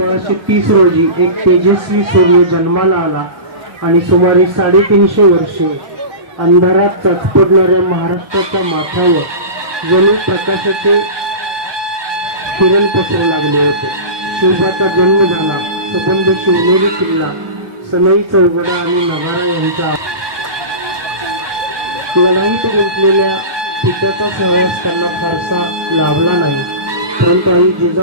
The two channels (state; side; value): late; left; 1.2 ms